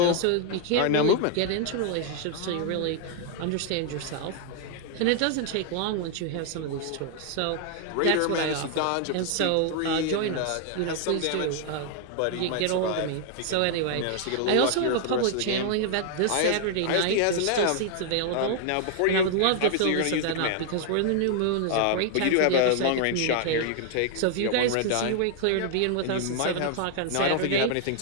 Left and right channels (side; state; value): both; different; correlation 0.00